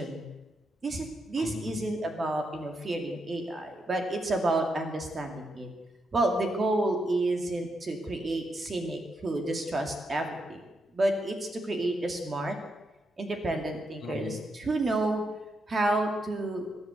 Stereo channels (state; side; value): normal; both; correlation 0.82